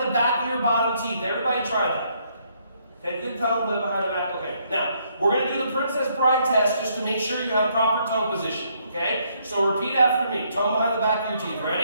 the back of your bottom teeth. Everybody try that. Okay, good tongue behind the back. Okay, now, we're going to do the Princess Bride test just to make sure you have proper tongue position, okay? So repeat after me. Tongue behind the back of your teeth.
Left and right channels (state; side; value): inverted; both; correlation -0.71